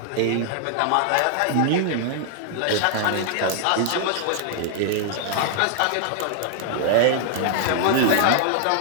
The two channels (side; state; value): both; different; correlation 0.00